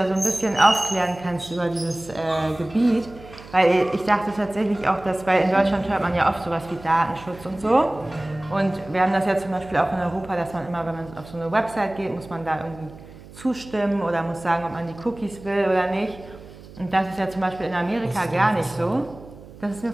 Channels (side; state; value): right; noise; hum, 19 dB below the sound